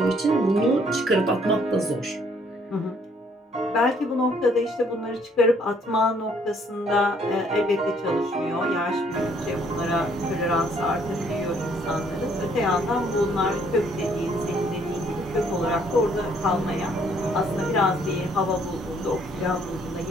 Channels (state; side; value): normal; both; correlation 0.65